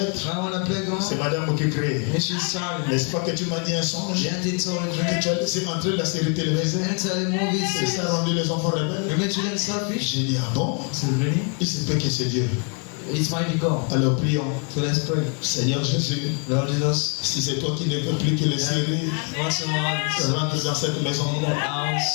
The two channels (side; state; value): right; quieter; 37.2 dB